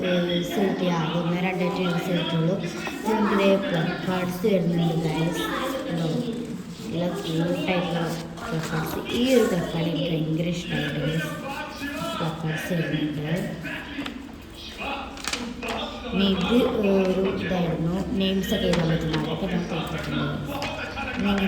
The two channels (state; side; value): identical; both; correlation 1.00